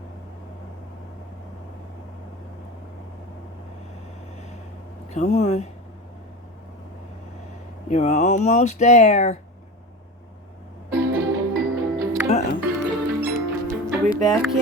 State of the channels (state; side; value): normal; both; correlation 0.29